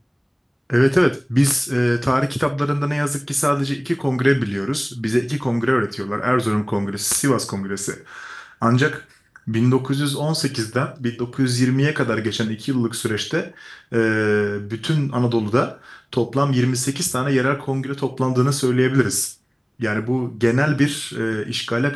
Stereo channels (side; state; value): both; identical; correlation 1.00